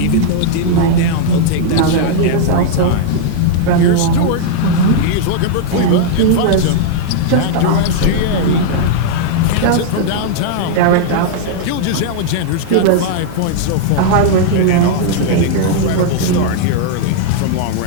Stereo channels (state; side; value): different; both; correlation -0.01